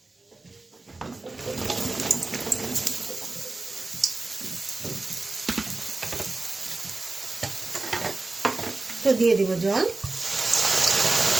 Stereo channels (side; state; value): left; quieter; 3.3 dB